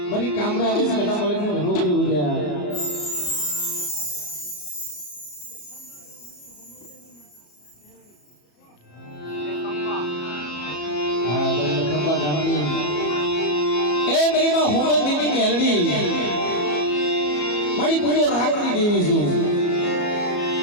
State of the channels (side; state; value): right; late; 34 ms